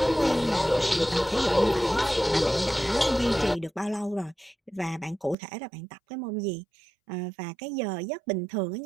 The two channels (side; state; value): left; drops out; at 5.4 s